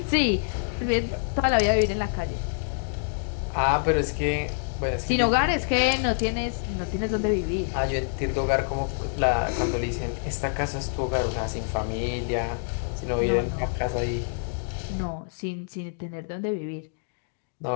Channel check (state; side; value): silent; right; digital silence